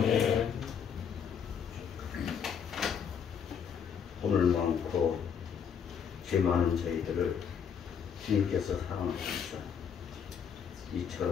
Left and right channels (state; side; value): quieter; right; 7.4 dB